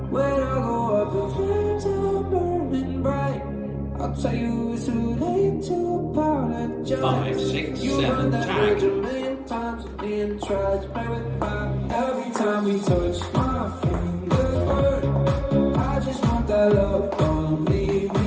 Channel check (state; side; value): identical; both; correlation 1.00